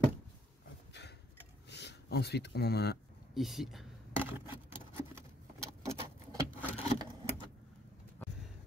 Hop. Ensuite, on en a un ici.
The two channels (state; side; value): normal; both; correlation 0.67